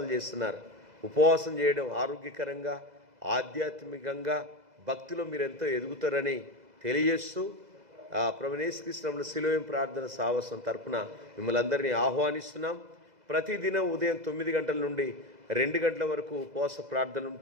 చేస్తున్నారు. ఉపవాసం చేయడం ఆరోగ్యకరంగా ఆధ్యాత్మికంగా భక్తిలో మీరు ఎంతో ఎదుగుతారని తెలియజేస్తూ ప్రభువైన యేసుక్రీస్తు శిలువ ప్రార్థన సాహసం తరపున మిమ్మల్ని అందరినీ ఆహ్వానిస్తున్నాం. ప్రతిదినం ఉదయం 9 గంటల నుండి 2 గంటల వరకు ఉపవాస ప్రార్థనలు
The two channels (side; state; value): left; late; 2.0 ms